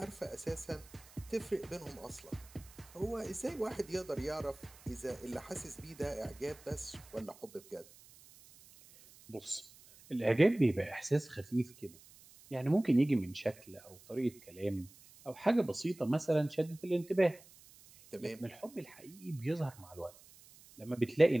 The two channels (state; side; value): noise; right; hiss, 23 dB below the sound